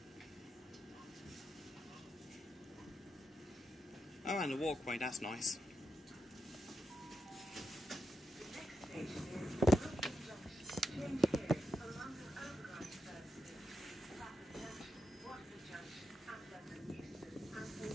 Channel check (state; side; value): normal; both; correlation 0.86